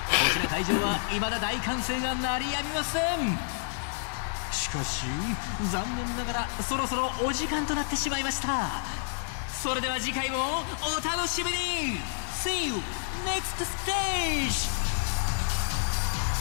こちら会場は未だ大歓声が鳴りやみません。しかし残念ながらそろそろお時間となってしまいました。それでは次回もお楽しみに。 See you next stage.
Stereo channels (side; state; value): right; silent; digital silence